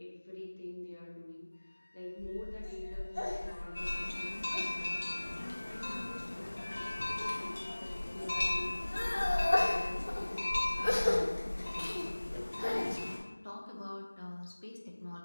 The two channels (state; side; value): inverted; both; correlation -1.00